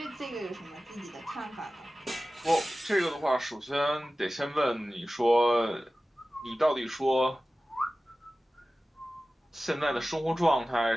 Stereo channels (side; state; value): both; normal; correlation 0.96